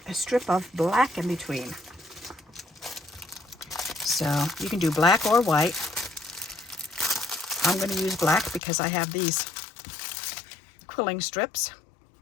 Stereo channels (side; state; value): right; drops out; at 8.6 s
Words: a strip of black in between. So you can do black or white. I'm going to use black because I have these quilling strips.